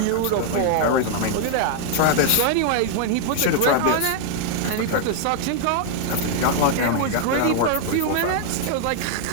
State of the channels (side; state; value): both; different; correlation 0.00